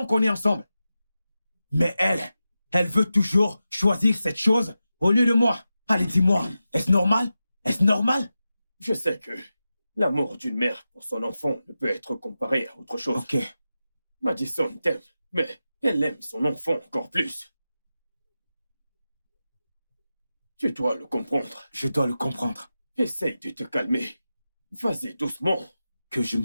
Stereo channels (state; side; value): inverted; both; correlation -0.92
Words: qu'on est ensemble. Mais elle veut toujours choisir cette chose au lieu de moi. Allez, dis-moi, est-ce normal? Est-ce normal? Je sais que l'amour d'une mère pour son enfant ne peut être comparé à autre chose. Ok. Madison t'aime, mais elle aime son enfant encore plus. Tu dois le comprendre. Je dois le comprendre. Essaye de te calmer. Vas-y doucement. Que je